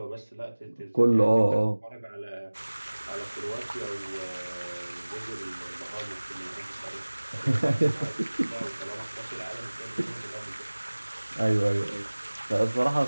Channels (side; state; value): both; inverted; correlation -1.00